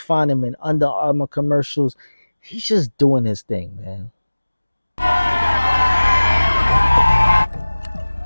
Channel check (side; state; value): both; inverted; correlation -1.00